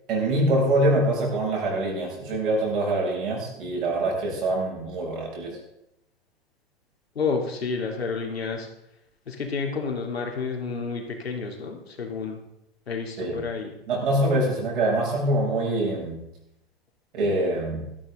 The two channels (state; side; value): normal; both; correlation 0.36